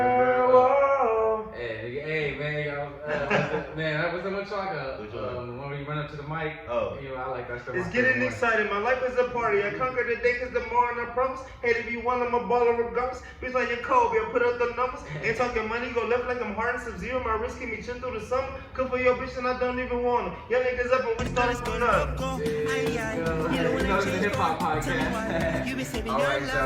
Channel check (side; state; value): both; identical; correlation 1.00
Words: Whoa. Hey, man, y'all, man, that was so much like when we run up to the mic. Oh. I like that stuff. It's getting exciting. My life is a party. I conquer the day cause tomorrow I promise. Hey, if you want, I'm a baller regardless. Bitch like your Kobe, I put up the numbers. Ain't talking money, go left like I'm hard and Sub-Zero. My wrist keep me chill through the summer. Cook for your bitch and I don't even want them. Y'all niggas up and we started from nothing. It's a hip hop podcast. Alright,